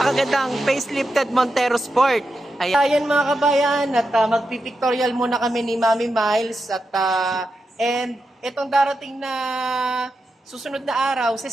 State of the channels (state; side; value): normal; both; correlation 0.88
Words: facelifted Montero Sport. Ayan mga kabayan, at magpipictorial muna kami ni Mami Miles and itong darating na susunod na araw,